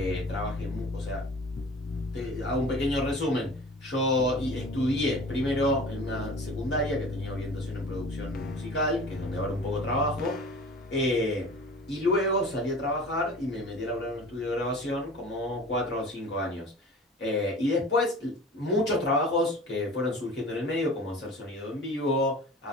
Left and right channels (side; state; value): both; normal; correlation 0.41